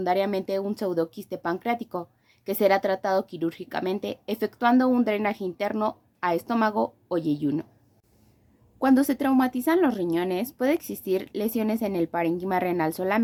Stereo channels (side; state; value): both; identical; correlation 1.00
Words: un pseudoquiste pancreático, que será tratado quirúrgicamente efectuando un drenaje interno a estómago o yeyuno. Cuando se traumatizan los riñones, puede existir lesiones en el parénquima renal